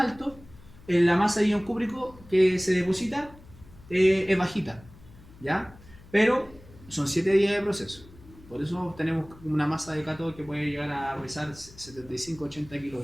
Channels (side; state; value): left; noise; hum, 22 dB below the sound